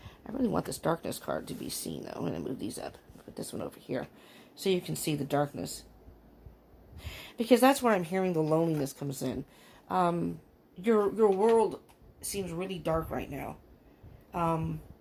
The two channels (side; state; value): both; identical; correlation 1.00